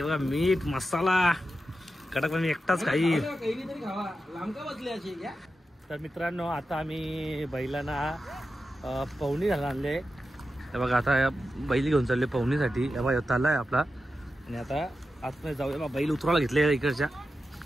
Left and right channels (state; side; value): normal; both; correlation 0.90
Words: बघा मीठ मसाला कडक. मी एकटाच खाईल. तर मित्रांनो आता आम्ही बैलांना पवनी घालून आणले. हे बघा आता बैल घेऊन चालले पवनीसाठी. हे बघा ताला आहे आपला. आणि आता आतमध्ये जाऊया. बैल उतरायला घेतले इकडच्या.